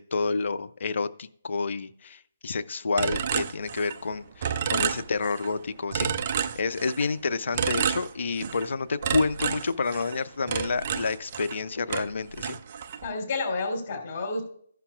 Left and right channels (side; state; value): both; inverted; correlation -0.76